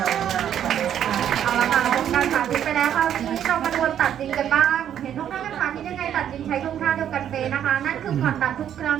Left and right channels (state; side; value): quieter; left; 9.9 dB